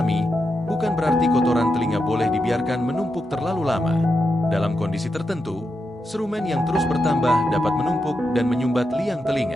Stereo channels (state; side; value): normal; both; correlation 0.86